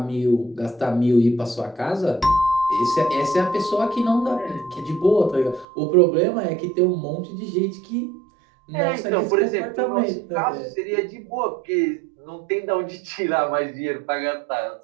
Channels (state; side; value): drops out; left; at 5.7 s